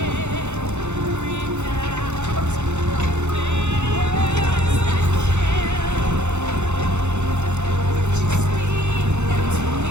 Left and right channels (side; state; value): left; late; 0.83 ms